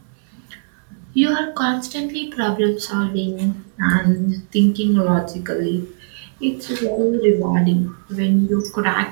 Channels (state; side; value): silent; left; digital silence